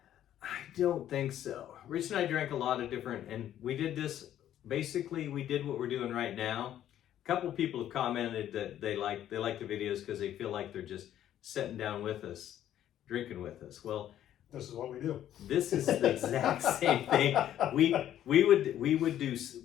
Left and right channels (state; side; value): quieter; right; 11.5 dB